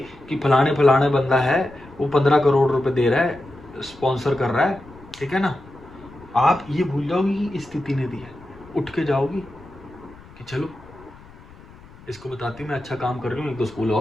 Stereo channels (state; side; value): noise; left; rumble, 22 dB below the sound